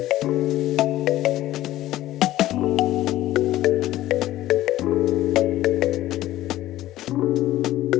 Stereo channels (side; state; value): right; quieter; 14.9 dB